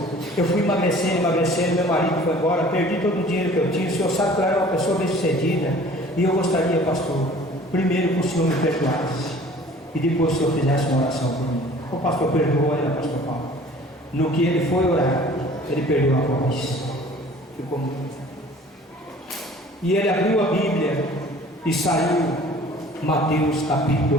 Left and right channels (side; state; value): both; normal; correlation 0.49